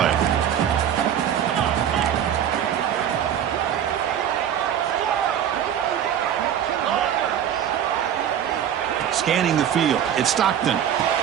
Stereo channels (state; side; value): quieter; left; 9.6 dB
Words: Scanning the field. It's Stockton.